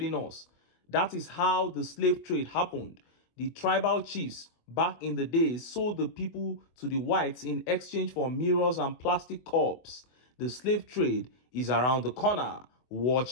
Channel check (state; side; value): late; right; 24 ms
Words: us. That is how the slave trade happened. The tribal chiefs back in the days sold the people to the whites in exchange for mirrors and plastic cups. The slave trade is around the corner.